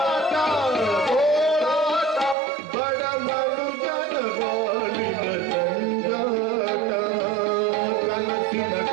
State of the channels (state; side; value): drops out; left; at 2.4 s